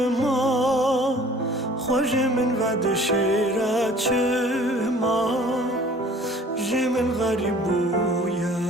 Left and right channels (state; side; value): normal; both; correlation 0.50